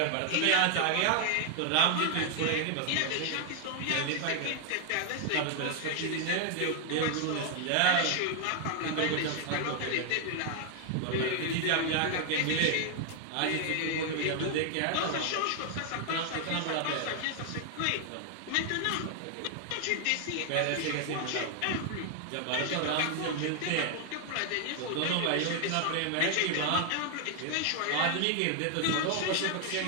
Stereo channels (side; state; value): both; different; correlation 0.00